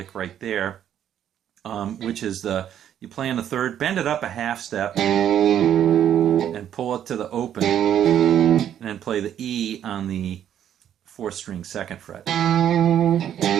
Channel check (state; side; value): quieter; left; 10.2 dB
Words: right there, which is you play on the 3rd, bend it up a half step, and pull it to the open, and then play the E on the 4th string 2nd fret.